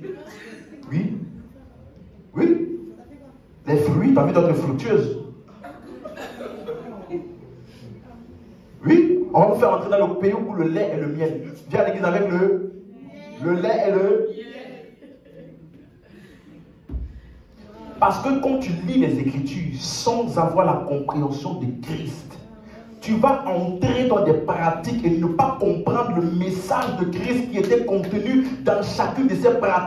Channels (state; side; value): identical; both; correlation 1.00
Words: Oui. Les fruits, tu as vu d'autres fructueuses. Oui. On va vous faire entrer dans le pays où le lait et le miel. Viens à l'église avec le lait et le. Parce que quand tu lis les Écritures sans avoir la compréhension de Christ, tu vas entrer dans des pratiques et ne pas comprendre le message de Christ qui était contenu dans chacune de ces